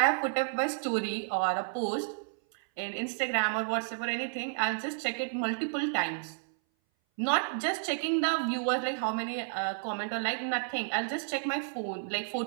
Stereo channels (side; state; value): left; silent; 57 dB below the other